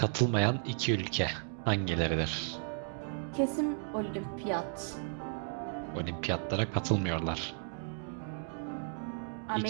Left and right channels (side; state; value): left; silent; 55 dB below the other